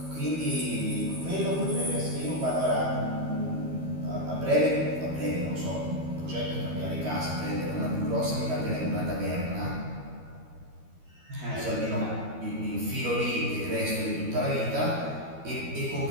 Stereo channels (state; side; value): late; left; 13 ms